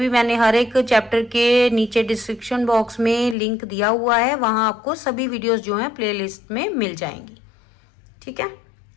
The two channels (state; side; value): drops out; right; at 3.4 s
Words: मैंने हर एक चैप्टर के नीचे डिस्क्रिप्शन बॉक्स में लिंक दिया हुआ है, वहां आपको सभी वीडियोस जो हैं प्लेलिस्ट में मिल जाएंगी। ठीक है,